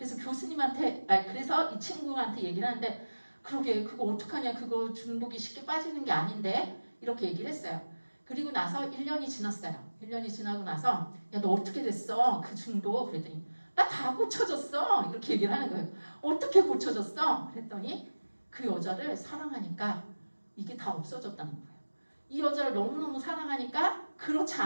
교수님한테, 그래서 이 친구한테 얘기를 하는데 그러게 그거 어떡하냐. 그거 중독이 쉽게 빠지는 게 아닌데 이렇게 얘기를 했어요. 그리고 나서 1년이 지났어요. 1년이 지나고 나서 야, 너 어떻게 됐어? 그 중독. 그랬더니 나 다 고쳐졌어. 이렇게 얘기를 하는 거예요. 어떻게 고쳐졌어? 그랬더니 그 여자를 사랑하니까 이게 다 없어졌다는 거예요. 이 여자를 너무너무 사랑하니까 그렇지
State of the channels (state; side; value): inverted; both; correlation -1.00